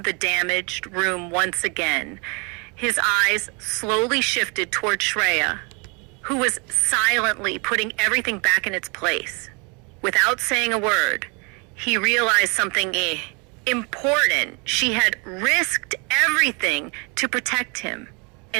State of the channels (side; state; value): left; quieter; 31.9 dB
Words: the damaged room once again. His eyes slowly shifted toward Shreya, who was silently putting everything back in its place. Without saying a word, he realized something important. She had risked everything to protect him.